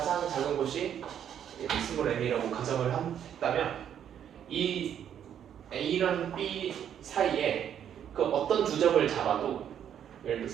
작은 곳이 스몰 n이라고 가정을 했다면 이 A랑 B 사이에 그 어떤 두 점을 잡아도 예를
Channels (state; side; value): quieter; left; 9.4 dB